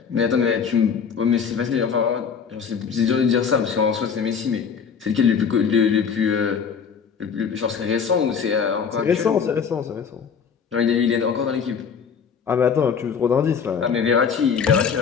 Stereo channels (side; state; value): right; quieter; 6.5 dB